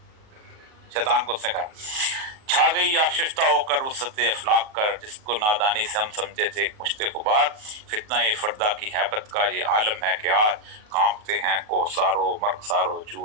شیطان کو اس نے کہا چھا گئی آشفتہ ہو کر وسط افلاق کر، جس کو نادانی سے ہم سمجھتے تھے ایک مشت غبار. فتنہ فردا کی ہیبت کا یہ عالم ہے کہ آج کانپتے ہیں کوسارو مرغسارو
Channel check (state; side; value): late; left; 38 ms